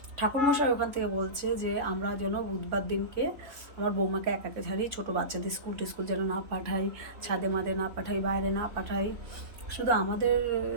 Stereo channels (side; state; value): left; late; 3.7 ms